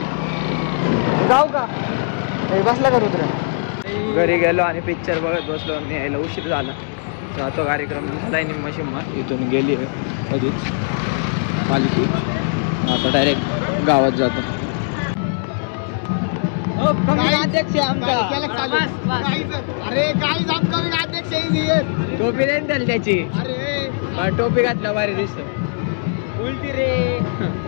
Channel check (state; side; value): silent; right; 64 dB below the other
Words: जाऊ का बसला का घरी गेलो आणि पिक्चर बघत बसलो आणि यायला उशीर झाला. जातो कार्यक्रम झालाय निम्मा शिम्मा. इथून गेली कधीच पालखी. आता डायरेक्ट गावात जातो. अरे काय अध्यक्ष टोपी देईन त्याला त्याची. अरे टोपी घातल्या भारी दिसत. उलटी